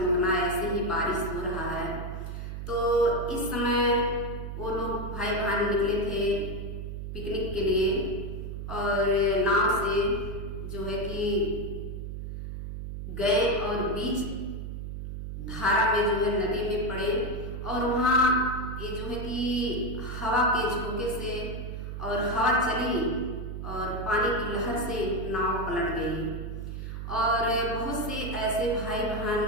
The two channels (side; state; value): right; noise; hum, 7 dB below the sound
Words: ऐसे ही बारिश हो रहा है। तो इस समय वो लोग भाई बहन निकले थे पिकनिक के लिए और नाव से जो है कि गए और बीच धारा में जो है नदी में पड़े और वहाँ ये जो है कि हवा के झोंके से और हवा चली और पानी की लहर से नाव पलट गई और बहुत से ऐसे भाई बहन